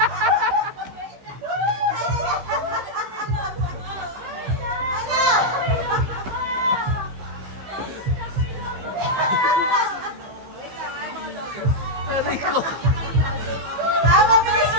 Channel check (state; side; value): late; left; 15 ms